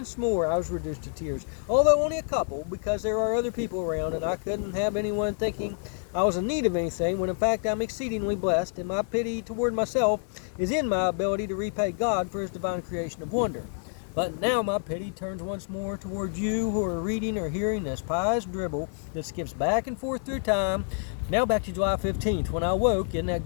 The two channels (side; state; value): right; silent; 59 dB below the other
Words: more I was reduced to tears. Although only a couple, because there are other people around, and I couldn't have anyone thinking I was in need of anything, when in fact I'm exceedingly blessed, and my pity toward myself is in my ability to repay God for his divine creation of wonder. But now my pity turns once more toward you who are reading or hearing this pious dribble that skips back and forth through time. Now back to July 15th, when I woke in that